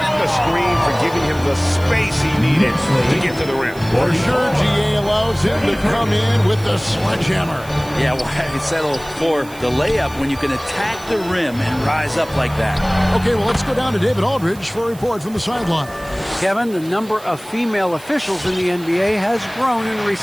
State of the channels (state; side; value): noise; right; hiss, 21 dB below the sound